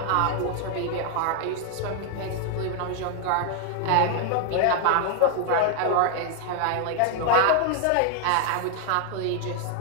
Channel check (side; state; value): both; different; correlation 0.00